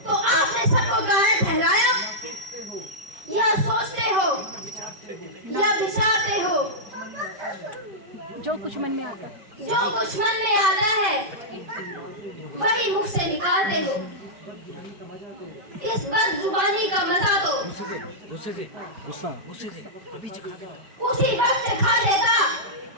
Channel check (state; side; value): late; left; 5.2 ms